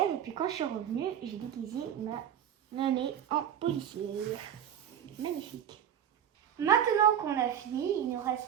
Et puis quand je suis revenue, j'ai déguisé ma mamie en policière. Magnifique. Maintenant qu'on a fini, il nous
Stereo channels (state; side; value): quieter; left; 9.5 dB